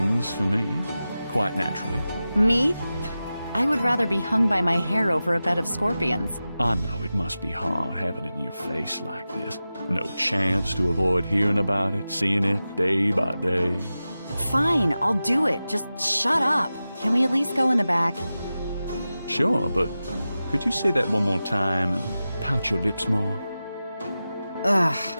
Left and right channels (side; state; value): both; inverted; correlation -0.94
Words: for me, quite naturally. Me? I would rather be hung by my hair over a bed of scorpions. I know it must be hard having it in your face like this. No chance to avoid hearing about it, seeing it day by day. Fine, I'll do it. Just shut up. Can we at least go in the back? Sure, but could you say that one more time and pout your lips more? Ugh.